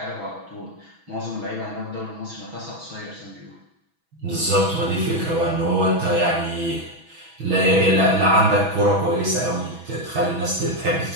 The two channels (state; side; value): late; left; 6.1 ms